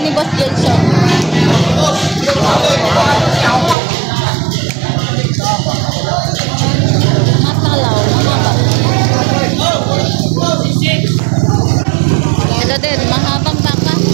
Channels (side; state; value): left; drops out; at 3.8 s